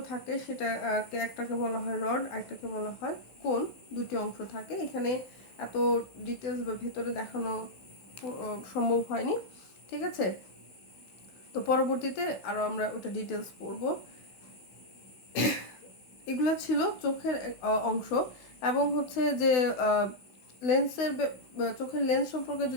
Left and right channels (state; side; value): late; right; 16 ms